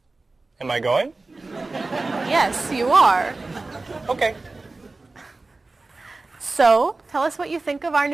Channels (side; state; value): left; quieter; 3.4 dB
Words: Am I going? Yes, you are. Okay. So, tell us what you think of our